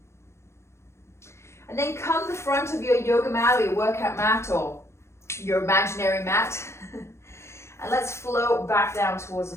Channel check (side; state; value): right; late; 0.13 ms